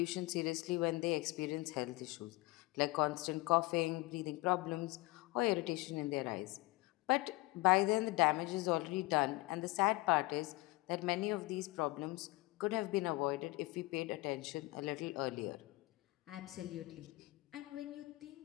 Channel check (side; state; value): right; quieter; 21.6 dB